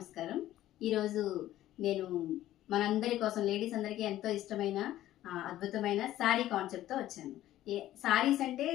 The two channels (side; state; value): right; quieter; 13.9 dB